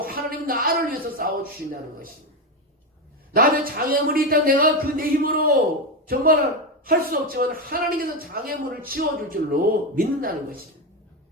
하나님은 나를 위해서 싸워주신다는 것입니다. 나한테 장애물이 있다 내가 그 내 힘으로 정말 할 수 없지만 하나님께서 장애물을 치워줄 줄로 믿는다는 것입니다.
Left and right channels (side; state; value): both; normal; correlation 0.12